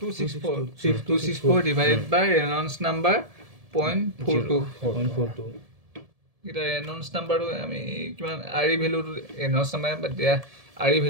264 ডিভাইডেড বাই ৰেনল্ডছ নাম্বাৰ 0.42 এতিয়া ৰেনল্ডছ নাম্বাৰটো আমি কিমান আৰ ই ভেলুটো ৰেনল্ডছ নাম্বাৰ বাদ দিয়া আৰ ই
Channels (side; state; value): left; late; 1.7 ms